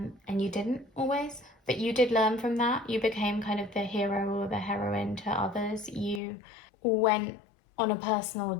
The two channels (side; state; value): right; drops out; at 6.2 s